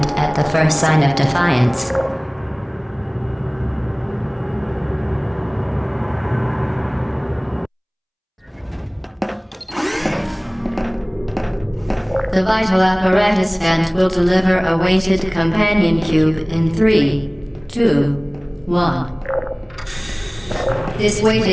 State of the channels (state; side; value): identical; both; correlation 1.00